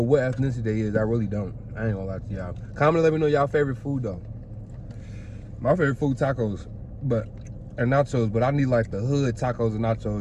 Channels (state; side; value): identical; both; correlation 1.00